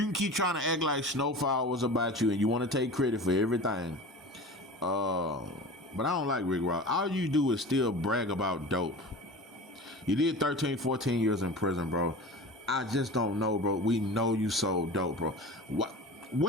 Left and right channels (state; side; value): normal; both; correlation 0.35